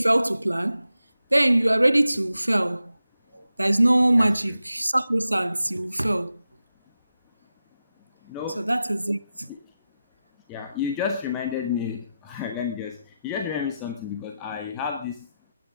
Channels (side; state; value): both; inverted; correlation -0.90